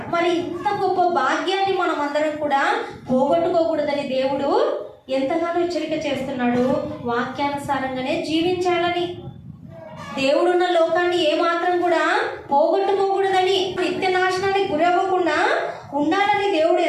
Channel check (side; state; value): both; identical; correlation 1.00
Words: మరి ఇంత గొప్ప భాగ్యాన్ని మనం అందరం కూడా పోగొట్టుకోకూడదని దేవుడు ఎంతగానో హెచ్చరిక చేస్తున్నాడు. వాక్యానుసారంగానే జీవించాలని, దేవుడున్న లోకాన్ని ఏమాత్రం కూడా పోగొట్టుకోకూడదని, నిత్య నాశనానికి గురవ్వకుండా ఉండాలని దేవుడు